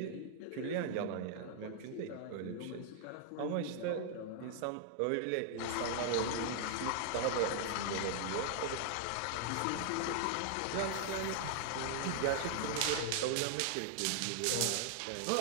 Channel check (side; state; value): both; different; correlation -0.01